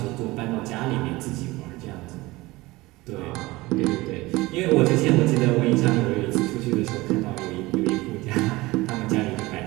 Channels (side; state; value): left; quieter; 20.5 dB